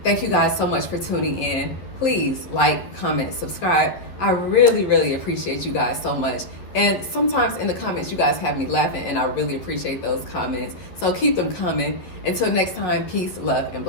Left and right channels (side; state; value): right; late; 11 ms